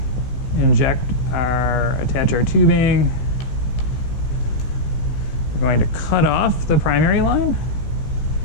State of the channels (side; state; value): right; late; 16 ms